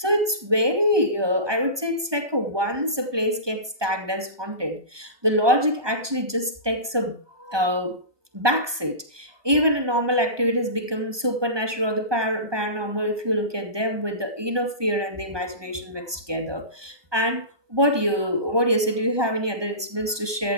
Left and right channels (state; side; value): late; left; 1.2 ms